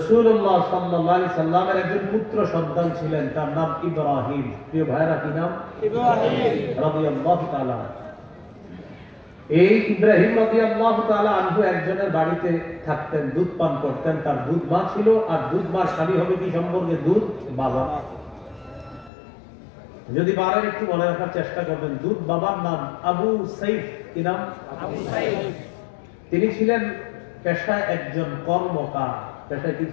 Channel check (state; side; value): drops out; right; at 19.1 s